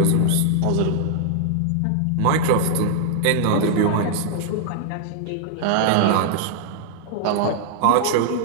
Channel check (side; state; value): both; different; correlation -0.01